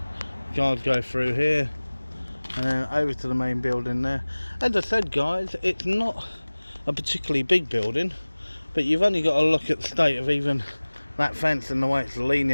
Guys go through here and then over to the main building there. As I said, guys, it's not a particularly big building, but you've only got to look at the state of even that fence and the way it's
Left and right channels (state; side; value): inverted; both; correlation -1.00